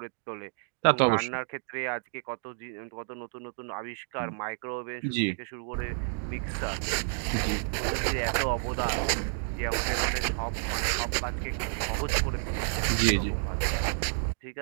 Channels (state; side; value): silent; left; digital silence